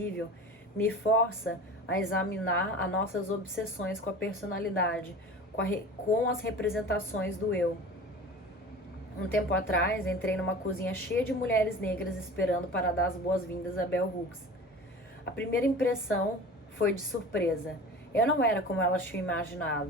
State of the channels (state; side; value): normal; both; correlation 0.37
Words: me força a examinar as nossas obsessões com a personalidade, com as representações do eu. Um tempo atrás, entrei numa cozinha cheia de mulheres negras esperando para dar as boas-vindas a Bell Hooks. A primeira impressão foi de surpresa. Eu não era como elas tinham